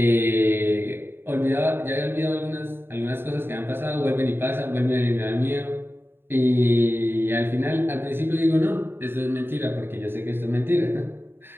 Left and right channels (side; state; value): left; late; 0.11 ms